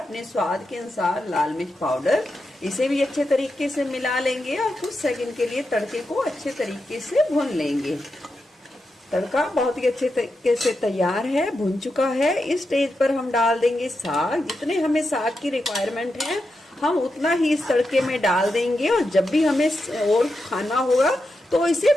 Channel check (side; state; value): both; normal; correlation 0.87